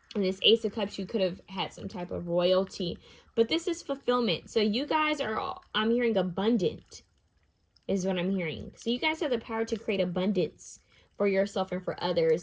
And this Ace of Cups, you could have had some type of royalty. But this is fulfillment. So you guys are, I'm hearing abundant is what I'm hearing. So you guys have the power to create abundance for yourself and for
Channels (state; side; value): identical; both; correlation 1.00